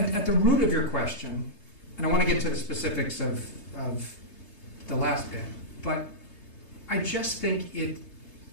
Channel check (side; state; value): right; late; 3.3 ms